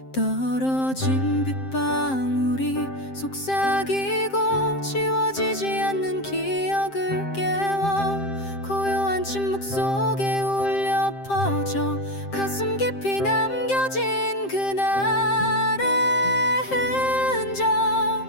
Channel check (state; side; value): late; right; 7.6 ms